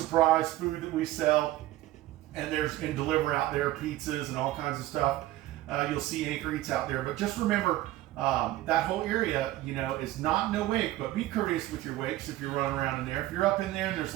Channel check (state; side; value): quieter; left; 15.7 dB